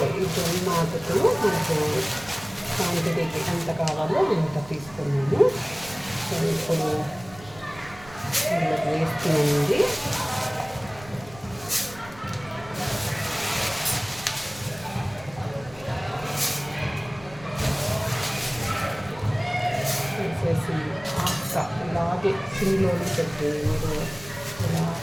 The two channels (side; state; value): right; noise; rumble, 20 dB below the sound